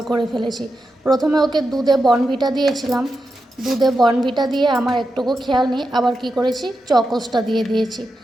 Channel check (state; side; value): normal; both; correlation 0.88